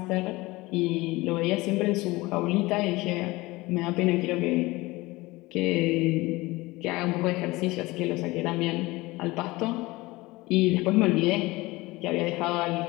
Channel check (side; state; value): right; quieter; 21.1 dB